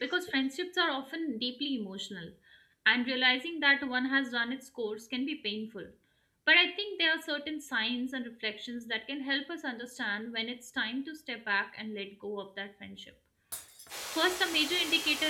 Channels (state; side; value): identical; both; correlation 1.00